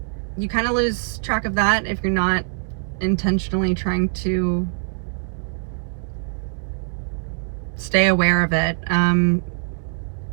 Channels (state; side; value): silent; left; digital silence